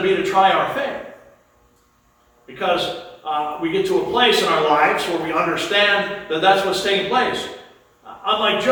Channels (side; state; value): both; identical; correlation 1.00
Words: be to try our faith. Because we get to a place in our lives where we understand that that's what's taking place. Unlike